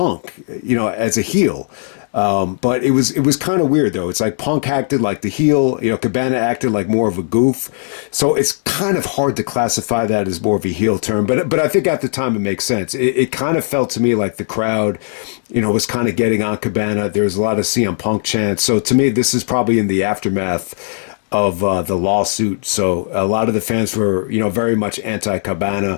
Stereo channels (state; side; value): silent; right; digital silence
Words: as a heel. But it was kind of weird though. It's like Punk acted like the heel, Cabana acted like more of a goof. So it's kind of hard to classify that as more of a heel term. But I think at the time it makes sense. It kind of felt to me like the crowd, was kind of getting on Cabana. There was a lot of CM Punk chants. So to me, this is probably in the aftermath of the lawsuit. So a lot of the fans were, very much anti-Cabana,